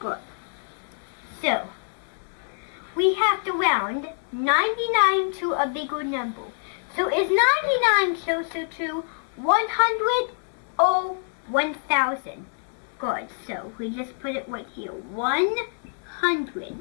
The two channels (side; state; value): right; silent; digital silence